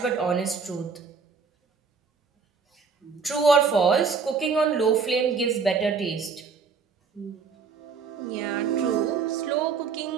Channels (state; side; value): quieter; left; 5.4 dB